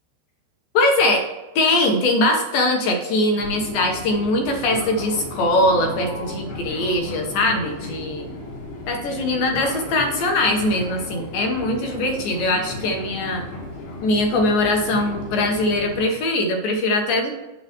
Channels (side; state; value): right; late; 14 ms